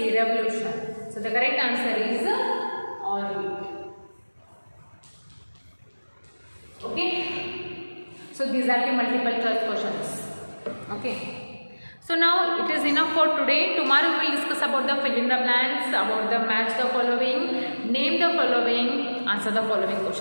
revolution. So the correct answer is orbit. Okay, so these are the multiple choice questions. Okay, so now it is enough for today. Tomorrow we will discuss about the fill in the blanks, about the match the following, name the following, answer the following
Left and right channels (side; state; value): both; inverted; correlation -1.00